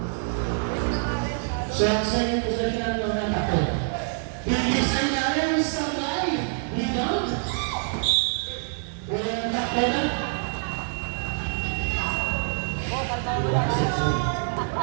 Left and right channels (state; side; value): silent; left; digital silence